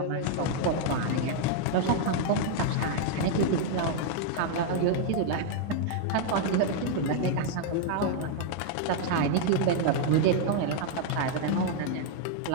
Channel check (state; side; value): different; both; correlation 0.00